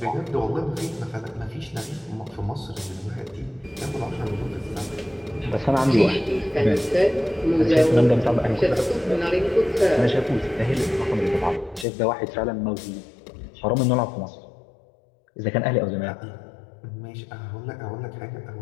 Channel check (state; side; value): drops out; right; at 11.9 s